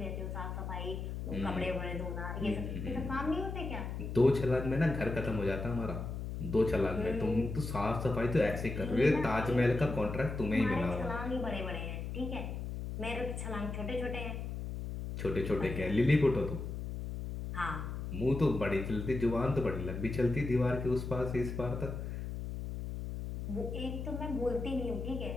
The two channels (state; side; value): noise; left; hum, 5 dB below the sound